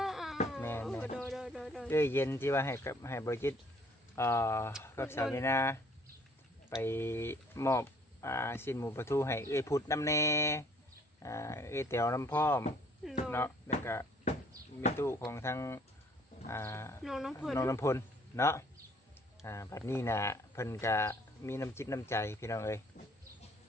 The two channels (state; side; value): normal; both; correlation 0.60